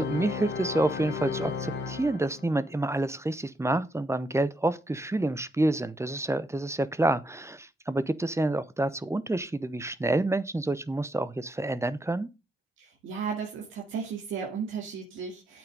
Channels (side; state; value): both; normal; correlation 0.79